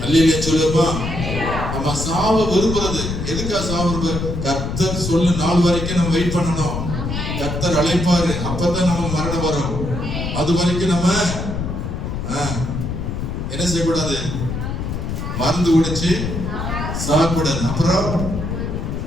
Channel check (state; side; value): noise; left; rumble, 4 dB below the sound